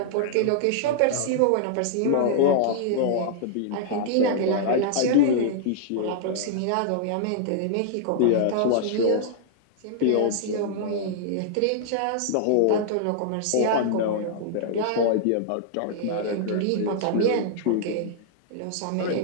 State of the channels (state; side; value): different; both; correlation -0.01